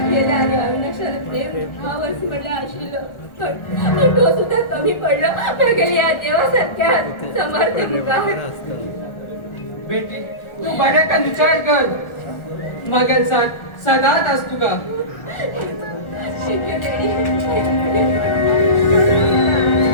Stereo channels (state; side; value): late; right; 1.4 ms